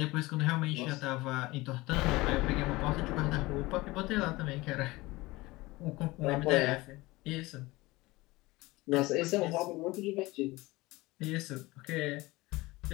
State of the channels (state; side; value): quieter; right; 21.0 dB